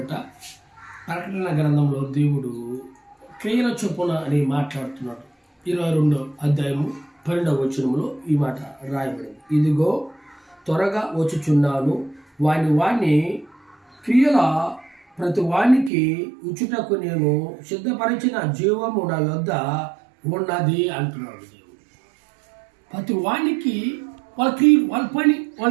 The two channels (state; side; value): drops out; left; at 15.9 s